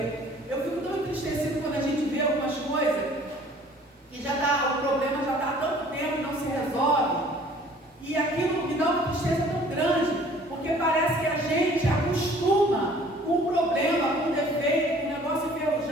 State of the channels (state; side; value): normal; both; correlation 0.53